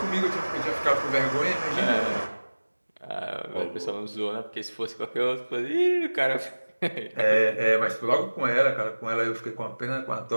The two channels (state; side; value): inverted; both; correlation -1.00